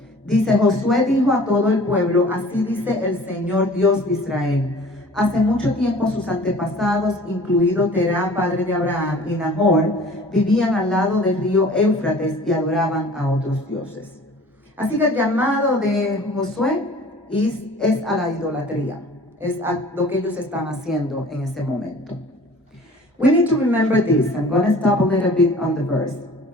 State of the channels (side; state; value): both; normal; correlation 0.47